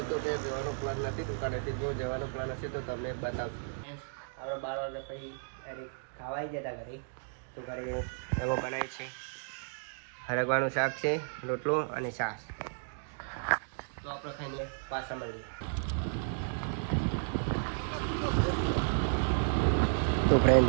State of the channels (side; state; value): left; silent; digital silence